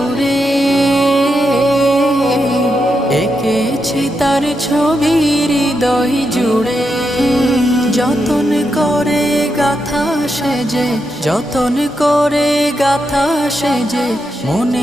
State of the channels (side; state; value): both; normal; correlation 0.84